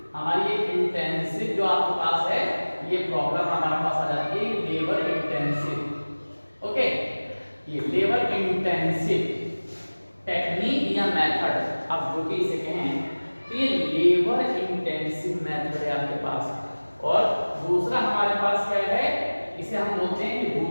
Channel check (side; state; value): both; inverted; correlation -1.00